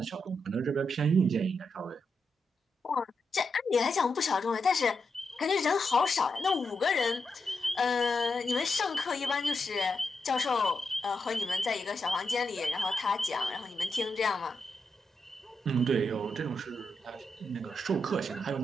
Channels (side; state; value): both; normal; correlation 0.84